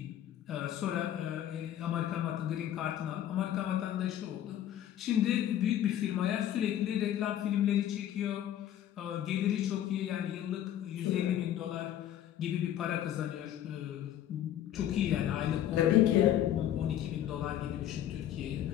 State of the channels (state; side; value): quieter; right; 11.4 dB